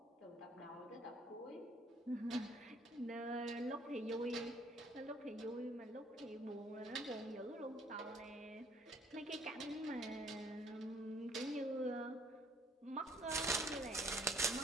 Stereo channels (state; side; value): normal; both; correlation 0.60